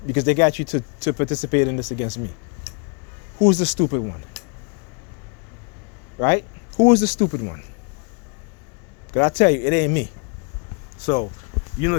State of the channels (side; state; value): right; quieter; 34.6 dB